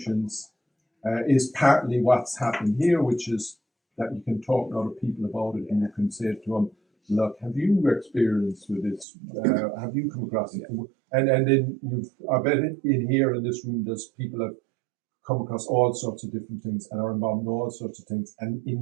is partly what's happened here, which is that you can talk to other people about it and you can say to them, look, have you experienced with this? Have you come across it? And then I bet in here in this room, there's people have come across all sorts of different things and are involved in all sorts of things. And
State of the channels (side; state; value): left; drops out; at 9.1 s